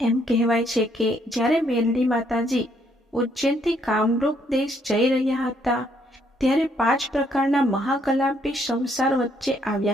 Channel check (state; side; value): normal; both; correlation 0.70